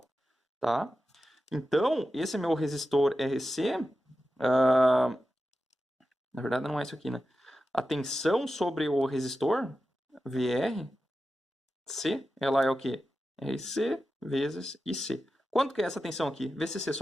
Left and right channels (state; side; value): normal; both; correlation 0.92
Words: tá? Então, esse meu resistor RC, na verdade não é isso aqui, né? A tensão sobre o resistor, VRC, ela é o quê? RC vezes IC. Quanto que é essa tensão aqui? VCC